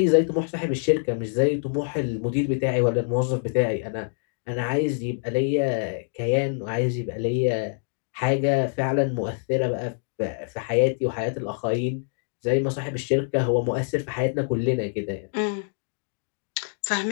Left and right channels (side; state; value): right; silent; digital silence